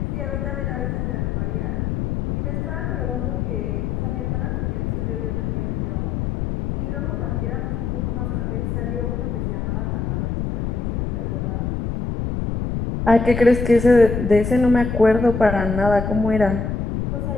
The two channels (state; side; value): noise; left; rumble, 1 dB below the sound